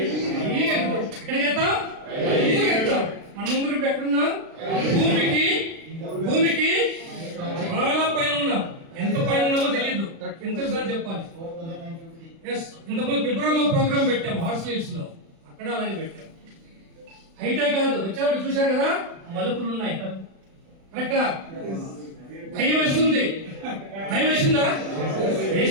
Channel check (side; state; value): left; late; 36 ms